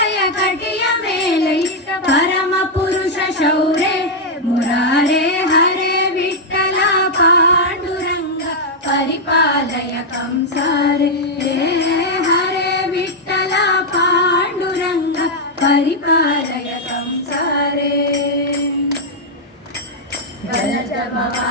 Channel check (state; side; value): normal; both; correlation -0.02